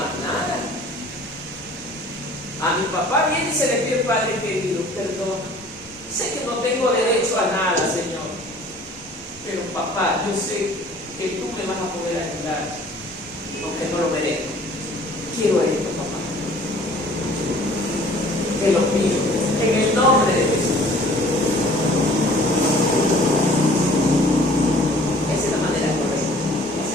nada. A mi papá viene y se le pide: Padre querido, perdón. Sé que no tengo derecho a nada, Señor. Pero papá, yo sé que tú me vas a poder ayudar, aunque no lo merezco. Quiero esto, papá. Te lo pido, en el nombre de Jesús. Esa es la manera correcta. Esa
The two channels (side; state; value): both; normal; correlation 0.51